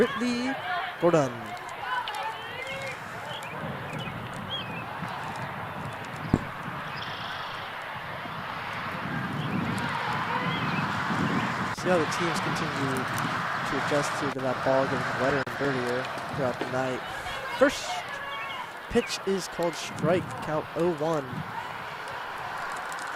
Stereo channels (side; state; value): both; identical; correlation 1.00